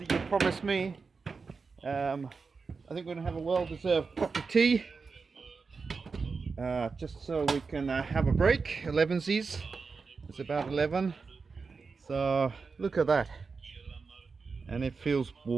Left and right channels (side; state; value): left; quieter; 4.8 dB